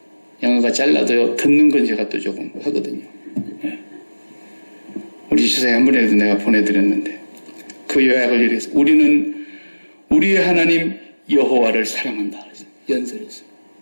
영어가 잘라도요. 듣는 건 제가 또 조금 하거든요. 우리 주사에 한 번에도 내가 보내드렸는데 그 요약을 이렇게 해서 우리는 우리의 하나님 여호와를 사랑한다. 그래서 연설했어요.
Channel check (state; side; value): inverted; both; correlation -1.00